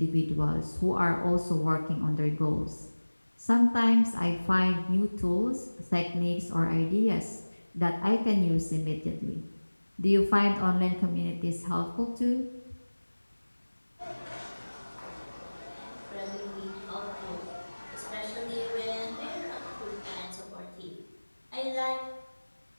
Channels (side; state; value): both; inverted; correlation -1.00